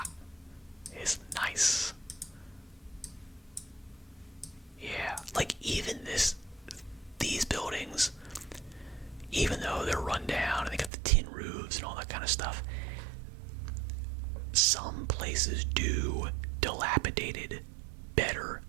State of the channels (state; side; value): drops out; left; at 10.9 s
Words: It's nice. Yeah, like even these buildings, even though they're run down and they got the tin roofs and all that kind of stuff, some places do dilapidated better